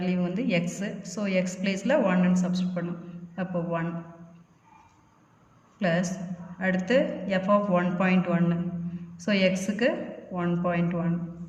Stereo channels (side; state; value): both; identical; correlation 1.00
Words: வந்து x. ஸோ x பிளேஸில் 1ன்னு சப்ஸ்டியூட் பண்ணோம். அப்போ 1 ப்ளஸ் அடுத்து f of 1.1. ஸோ xக்கு 1.1.